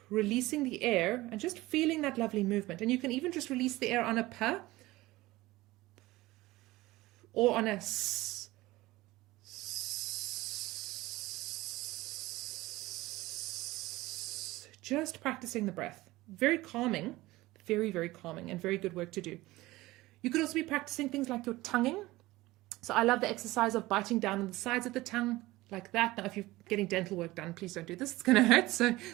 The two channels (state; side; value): quieter; left; 18.8 dB